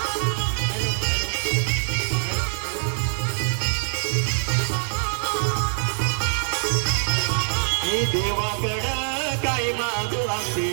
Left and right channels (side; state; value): left; silent; digital silence